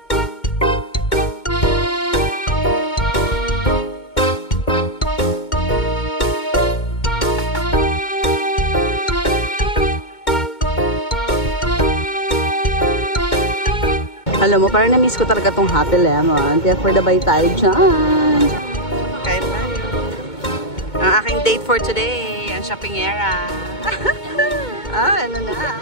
Alam mo, parang na-miss ko talaga tong Happy Lemon. Kaya for the bye tayo dyan. Kain tayo. Ang aking date for today, ang shopping era. Ano na.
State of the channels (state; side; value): late; right; 2.2 ms